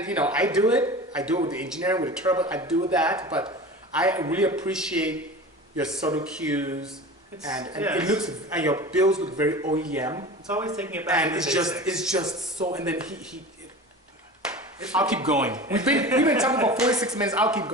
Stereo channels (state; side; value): normal; both; correlation 0.35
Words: you know, I do it with the engineering, with the turbo. I do that, but I really appreciate your subtle cues, and it looks, and your builds look very OEM. It's always taking it back. And it's just so. And then I'll keep going. We've been talking about 46 minutes. I'll keep